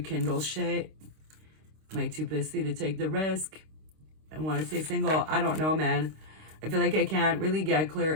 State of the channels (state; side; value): late; left; 26 ms